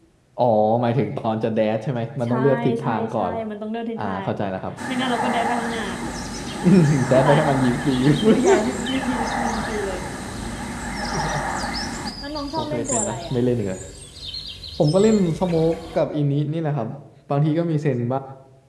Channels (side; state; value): both; identical; correlation 1.00